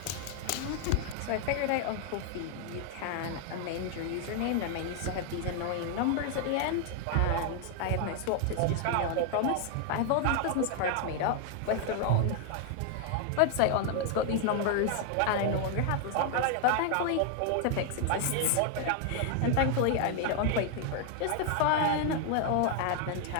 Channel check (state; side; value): different; both; correlation 0.00